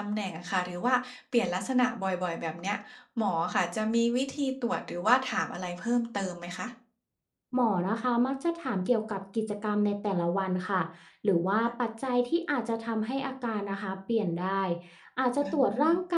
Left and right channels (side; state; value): both; identical; correlation 1.00